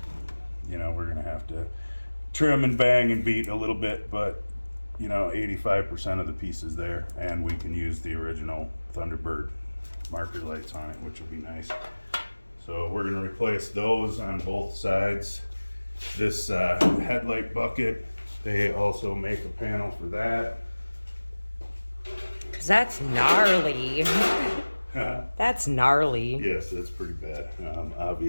You know, we're going to have to trim and bang and beat a little bit, but you know, 85% of the pieces there, and we can use the original Thunderbird marker lights on it, which will be nice. So we're going to replace those on both sides. This headlight bucket, they also make a panel for that. Cause that's gnarly. That's gnarly. Yes, that's pretty bad.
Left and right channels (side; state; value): both; inverted; correlation -1.00